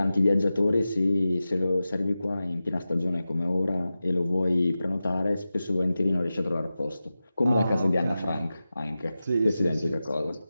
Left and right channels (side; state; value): both; inverted; correlation -0.94